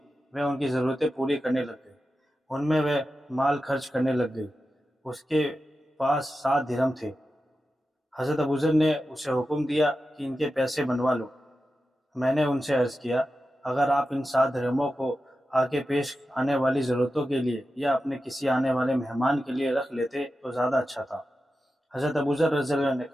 وہ ان کی ضرورتیں پوری کرنے لگ گئے، ان میں وہ مال خرچ کرنے لگ گئی، اس کے پاس 7 درہم تھے۔ حضرت ابوذر نے اسے حکم دیا کہ ان کے پیسے بنوا لو۔ میں نے ان سے عرض کیا، اگر آپ ان 7 درہموں کو آگے پیش آنے والی ضرورتوں کے لیے یا اپنے کسی آنے والے مہمان کے لیے رکھ لیتے تو زیادہ اچھا تھا۔ حضرت ابوذر رضی اللہ عنہ نے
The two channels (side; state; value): both; normal; correlation 0.92